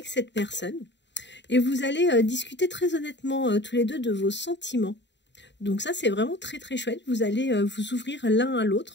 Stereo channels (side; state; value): right; late; 0.52 ms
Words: cette personne. Et vous allez discuter très honnêtement tous les deux de vos sentiments. Donc ça, c'est vraiment très très chouette. Vous allez vous ouvrir l'un à